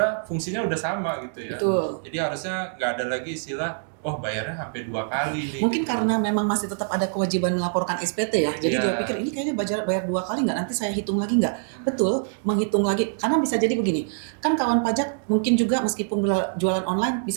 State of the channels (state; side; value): silent; left; digital silence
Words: fungsinya udah sama gitu ya. Betul. Jadi harusnya nggak ada lagi istilah bayarnya sampai 2 kali nih. Mungkin karena memang masih tetap ada kewajiban melaporkan SPT ya. Jadi dia pikir ini kayaknya bayar 2 kali nggak, nanti saya hitung lagi nggak. Betul, menghitung lagi. Karena bisa jadi begini, kan kawan pajak mungkin juga meskipun jualan online,